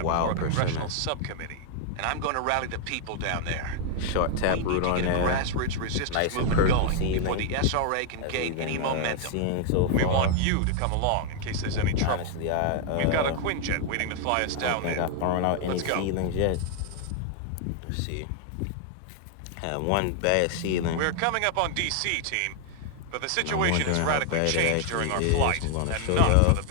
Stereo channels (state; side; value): different; both; correlation 0.00